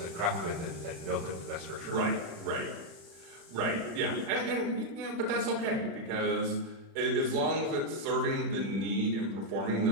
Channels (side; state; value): left; late; 36 ms